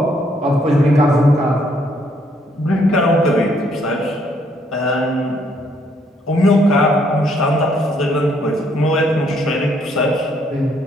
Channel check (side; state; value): both; normal; correlation 0.69